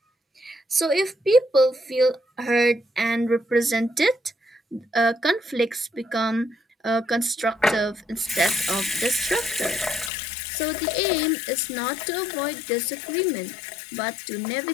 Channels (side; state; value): right; drops out; at 10.1 s